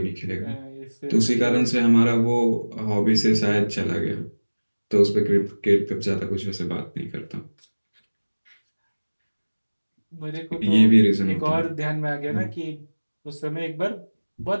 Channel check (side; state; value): both; inverted; correlation -1.00